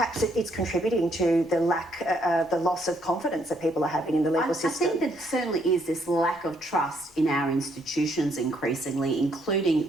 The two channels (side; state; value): both; normal; correlation 0.71